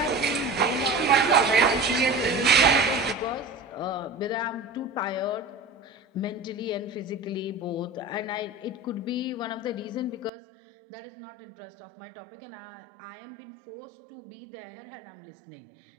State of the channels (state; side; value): drops out; left; at 10.3 s